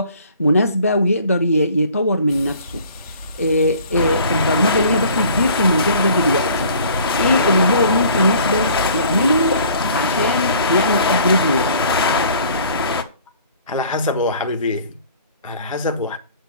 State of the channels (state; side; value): inverted; both; correlation -0.52